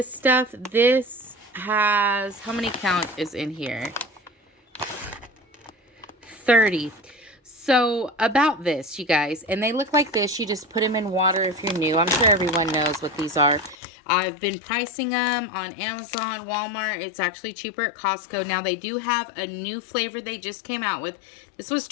stuff. This has, how many count is in here? 30. So about this, you guys, and they look like this. You just put them in water if you're new. I'm sure everyone knows what these are. I've been pricing them on Amazon, Walmart. It's actually cheaper at Costco. Now, they do have a new flavor they just came out with. This was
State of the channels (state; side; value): drops out; right; at 13.8 s